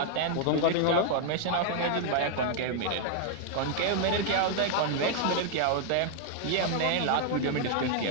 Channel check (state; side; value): different; both; correlation 0.00